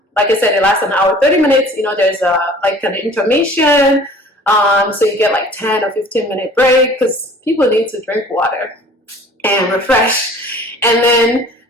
like I said, it lasts an hour, 30 minutes, there's like an intermission. So you get like 10 or 15-minute break because people need to drink water and refresh. And then,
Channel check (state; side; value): normal; both; correlation 0.48